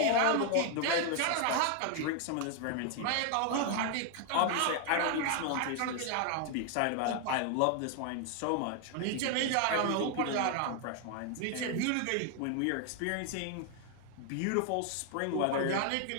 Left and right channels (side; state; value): both; different; correlation 0.01